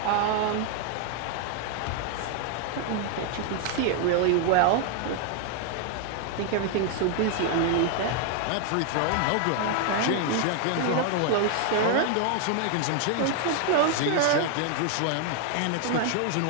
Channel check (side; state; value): both; different; correlation 0.00